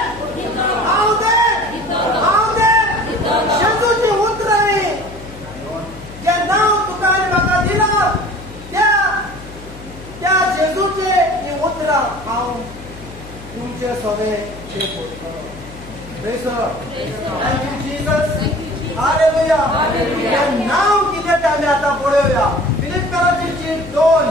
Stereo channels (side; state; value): left; noise; hum, 16 dB below the sound